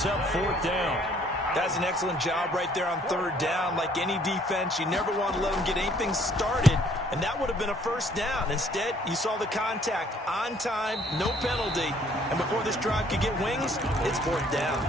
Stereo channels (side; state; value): both; normal; correlation 0.61